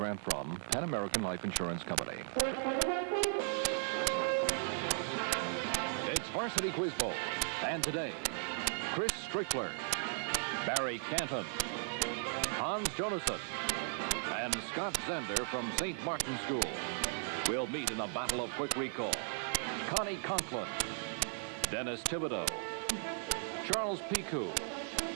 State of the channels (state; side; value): silent; left; 53 dB below the other